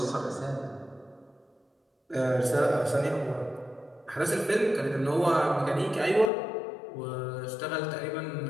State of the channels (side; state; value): right; drops out; at 6.3 s